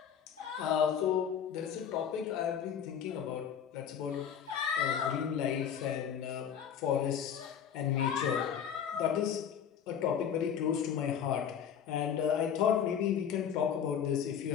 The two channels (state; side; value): quieter; right; 8.3 dB